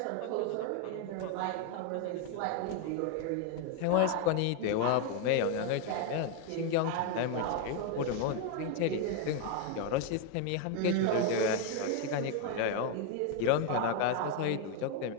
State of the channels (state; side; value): different; both; correlation 0.01